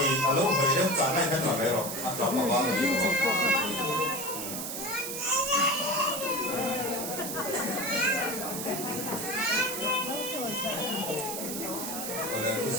đấy trả lại cái nào đấy rồi, anh làm mà bao nhiêu rồi.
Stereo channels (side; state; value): right; noise; hiss, 5 dB below the sound